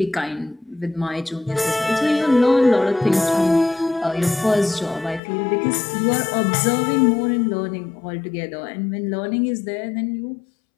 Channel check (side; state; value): right; drops out; at 5.2 s